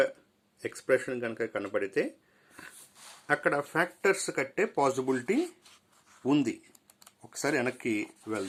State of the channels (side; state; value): both; identical; correlation 1.00